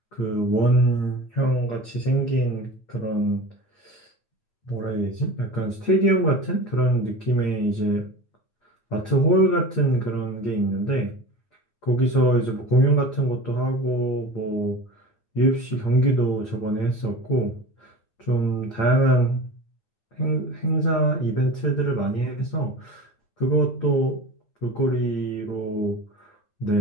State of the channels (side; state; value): right; late; 8.8 ms